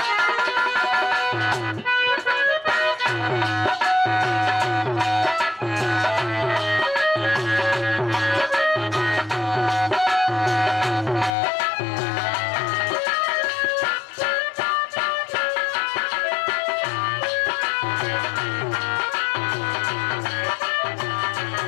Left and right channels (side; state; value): right; drops out; at 11.3 s